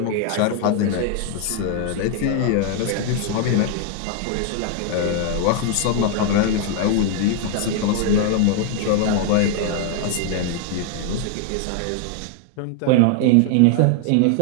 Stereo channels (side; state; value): both; different; correlation 0.00